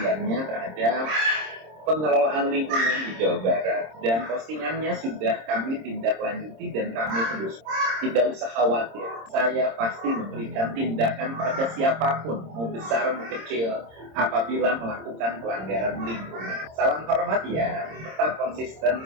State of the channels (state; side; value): late; left; 26 ms